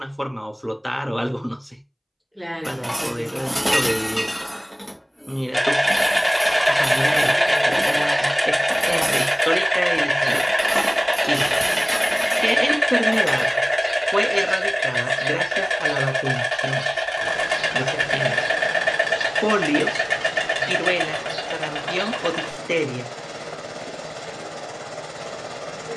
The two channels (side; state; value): both; identical; correlation 1.00